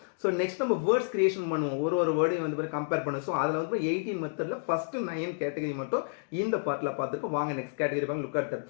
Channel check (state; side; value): silent; right; digital silence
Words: ஸோ நெக்ஸ்ட் நம்ம வேர்ட்ஸ் கிரியேஷன் பண்ணுவோம். ஒரு வேர்டையும் வந்து கம்பேர் பண்ணுவோம். ஸோ அதில் வந்து 18 மெத்தடில் ஃபர்ஸ்ட் 9 கேட்டகரி மட்டும் இந்த பார்ட்டில் பார்த்துருக்கோம். வாங்க நெக்ஸ்ட் கேட்டகரி பாருங்க. Look at that.